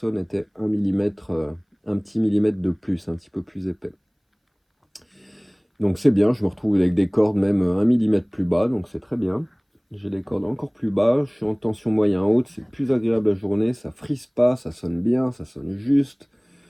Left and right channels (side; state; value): both; identical; correlation 1.00